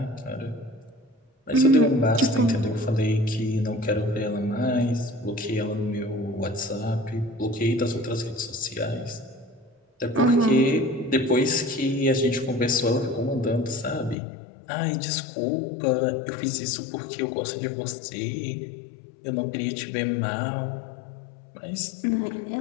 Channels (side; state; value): right; drops out; at 14.2 s